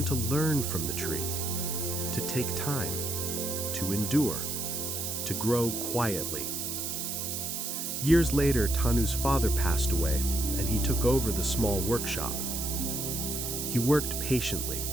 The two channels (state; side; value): noise; right; hiss, 3 dB below the sound